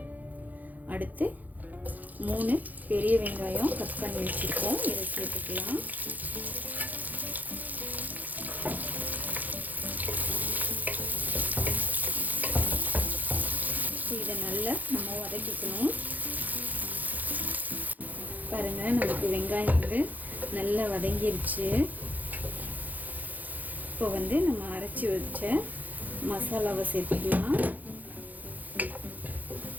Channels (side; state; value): left; late; 0.082 ms